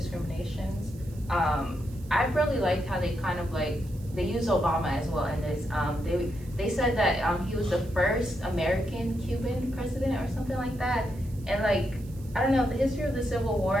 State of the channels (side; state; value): right; noise; hiss, 24 dB below the sound